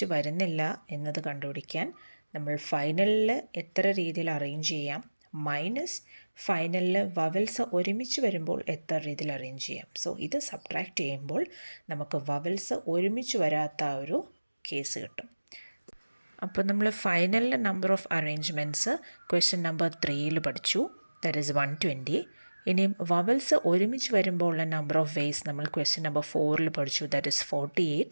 വരുന്നില്ല എന്നത് കണ്ടുപിടിക്കാൻ നമ്മൾ ഫൈനലിൽ എത്ര രീതിയിൽ അറേഞ്ച് ചെയ്യാം മൈനസ് ഫൈനലിൽ വവൽസ് ഒരുമിച്ച് വരുമ്പോൾ എത്ര രീതിയിൽ അറേഞ്ച് ചെയ്യാം. സോ ഇത് സബ്ട്രാക്റ്റ് ചെയ്യുമ്പോൾ നമുക്ക് വവൽസ് ഒരുമിച്ച് വരാത്ത ഒരു കേസ് കിട്ടും. അപ്പോൾ നമ്മൾ ഫൈനലിൽ number of arrangements question number 3 പഠിച്ചു, ദാറ്റ് ഈസ് 120. ഇനിയും വവൽസ് ഒരുമിച്ച് വരുമ്പോൾ ഉള്ള നമ്പർ ഓഫ് വേസ് നമ്മൾ ക്വസ്റ്റ്യൻ നമ്പർ 4 പഠിച്ചു, that is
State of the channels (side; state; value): both; inverted; correlation -1.00